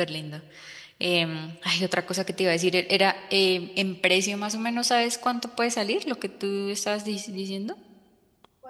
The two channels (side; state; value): both; identical; correlation 1.00